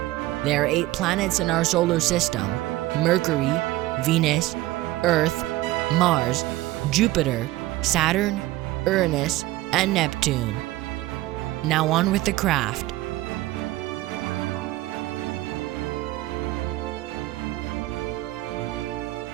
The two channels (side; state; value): left; quieter; 17.3 dB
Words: There are 8 planets in our solar system: Mercury, Venus, Earth, Mars, Jupiter, Saturn, Uranus, and Neptune. Now on with the craft.